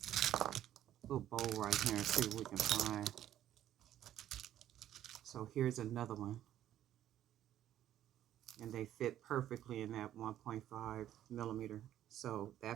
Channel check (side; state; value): left; quieter; 11.8 dB